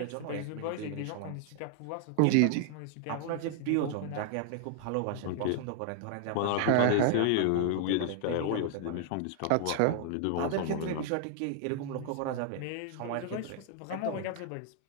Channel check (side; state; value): both; different; correlation 0.00